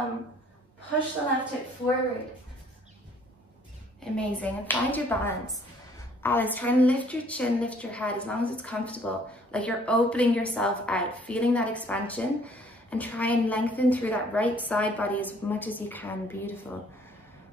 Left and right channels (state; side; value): normal; both; correlation 0.59